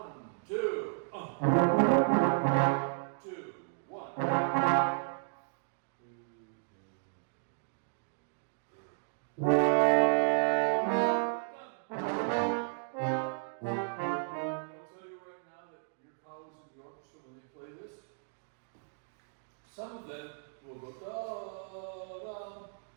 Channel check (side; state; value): left; silent; digital silence